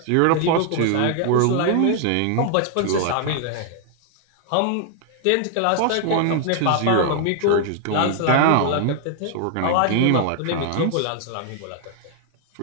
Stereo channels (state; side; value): different; both; correlation 0.00